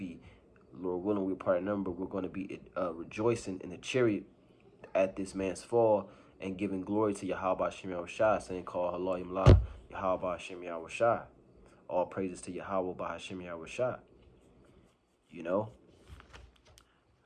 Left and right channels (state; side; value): identical; both; correlation 1.00